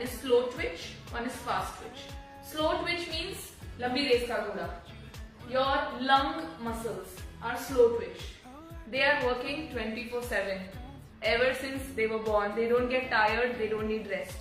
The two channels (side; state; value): both; identical; correlation 1.00